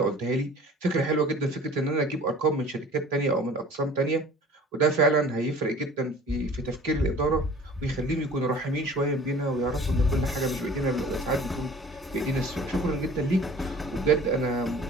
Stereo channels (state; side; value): normal; both; correlation 0.46